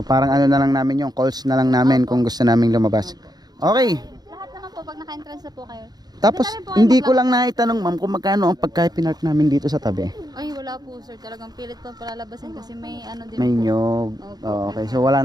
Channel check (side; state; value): left; late; 0.19 ms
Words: parang ano na lang namin yung calls na lang namin kung gusto naming lumabas. Okay. Lahat naman po, pag naka-entrance na po kayo. Tapos, Pwede na rin po kayo hindi ko lang naitanong ma'am kung magkano ang pagka-pinark namin dito sa tabi. Ay, wala po sir. Talagang pilit po palalabasin kasi may ano din May po. nyog. Opo. Okay, so wala